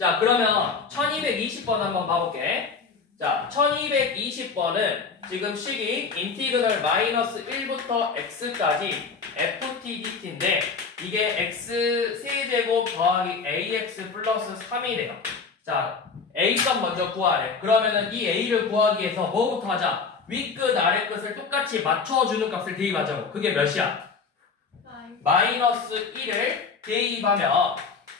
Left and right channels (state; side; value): quieter; right; 5.0 dB